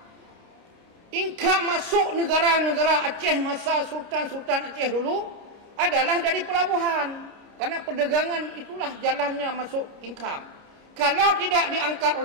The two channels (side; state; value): left; late; 29 ms